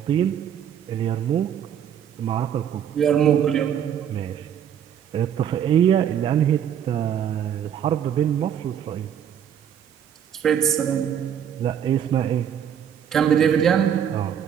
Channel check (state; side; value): quieter; left; 9.1 dB